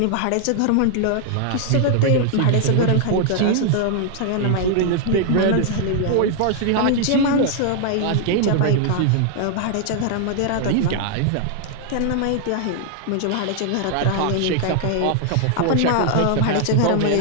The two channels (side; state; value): both; different; correlation 0.00